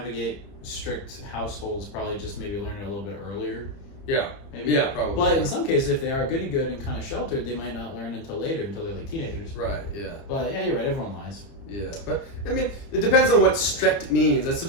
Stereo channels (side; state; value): right; late; 30 ms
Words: strict households probably just maybe learn it a little bit earlier. Yeah. Maybe. Yeah, probably. But in some cases, if they are good and kind of sheltered, they might not learn until later, until they're like teenagers. Right. Yeah. But yeah, you're right. Everyone lies. Yeah, but I mean, it depends on what strict means. That's